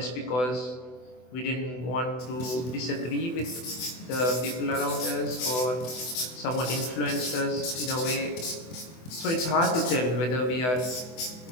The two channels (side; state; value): right; late; 24 ms